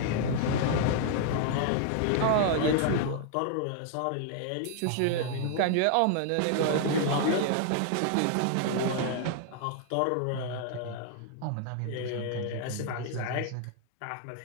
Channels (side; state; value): both; different; correlation -0.01